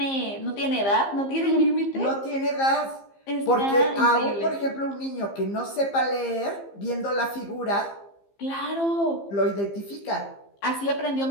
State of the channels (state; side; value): late; right; 15 ms